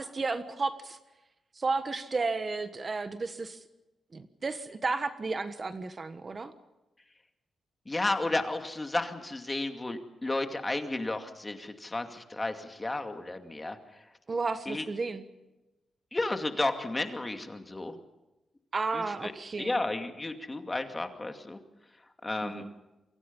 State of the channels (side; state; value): both; normal; correlation 0.93